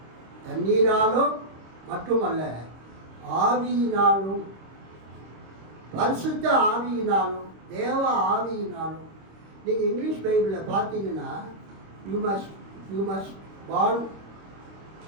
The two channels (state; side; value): late; left; 26 ms